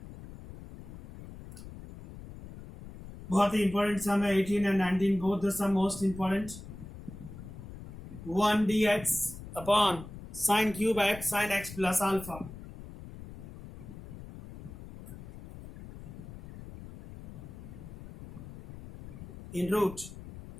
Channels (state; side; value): noise; left; rumble, 14 dB below the sound